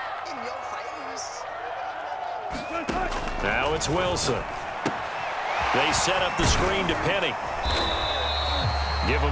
Now it's Wilson. They set up the screen to Penny. Give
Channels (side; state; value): both; identical; correlation 1.00